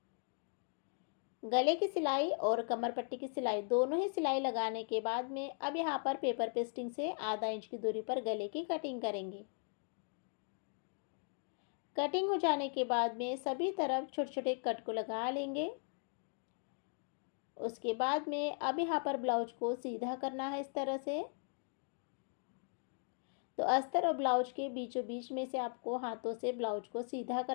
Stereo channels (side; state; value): right; silent; 52 dB below the other